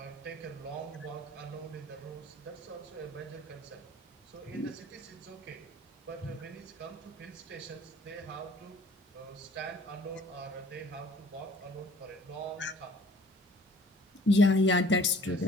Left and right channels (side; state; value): both; normal; correlation 0.53